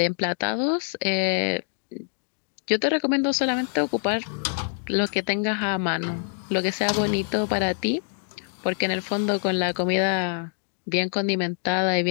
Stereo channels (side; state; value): right; silent; 62 dB below the other